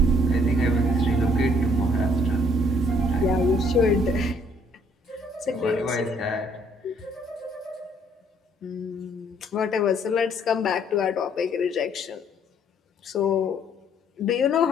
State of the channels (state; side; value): normal; both; correlation 0.63